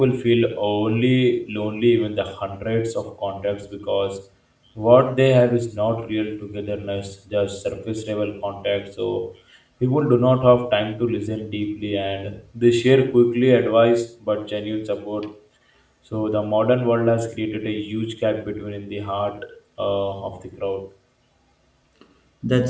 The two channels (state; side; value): identical; both; correlation 1.00